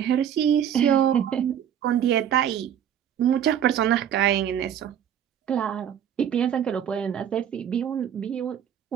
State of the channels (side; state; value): left; quieter; 9.4 dB